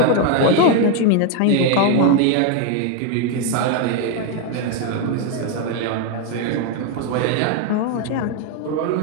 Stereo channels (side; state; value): both; different; correlation 0.01